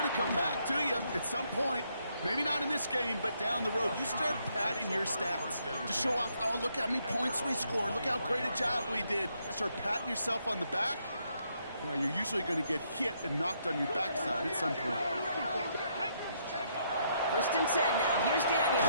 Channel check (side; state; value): both; inverted; correlation -0.74